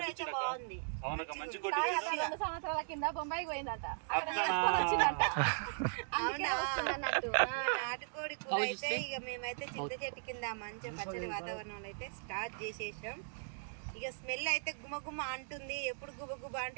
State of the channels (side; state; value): left; silent; digital silence